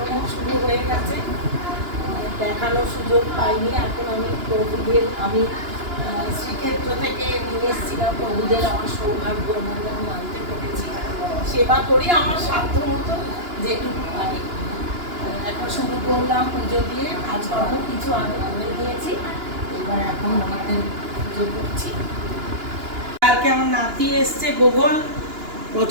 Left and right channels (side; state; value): left; late; 2.9 ms